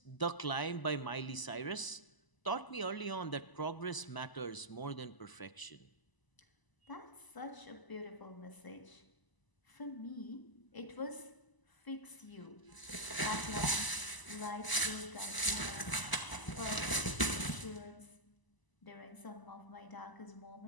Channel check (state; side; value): late; right; 1.0 ms